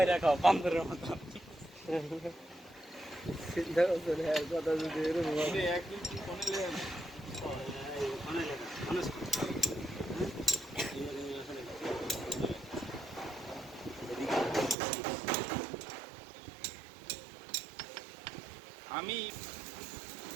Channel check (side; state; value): left; drops out; at 14.8 s